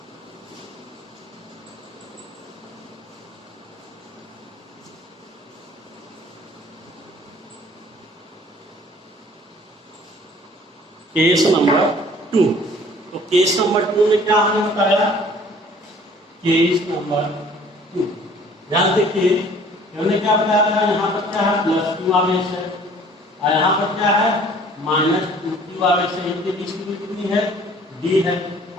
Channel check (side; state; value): both; normal; correlation 0.53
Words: Case number 2। तो केस नंबर 2 में क्या हमने बताया, केस नंबर 2 ध्यान देखिए, हमने क्या बताया था, यहाँ पर क्या है +q आवेश है और यहाँ पर क्या है -2q आवेश है। इनके बीच की दूरी कितनी है, d है।